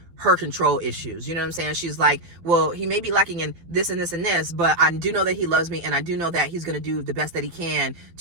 her control issues. You know what I'm saying? She's like, well, he may be lacking in this and this and this, but I do know that he loves me, and I do know that he's going to do the best that he can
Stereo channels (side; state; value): left; late; 12 ms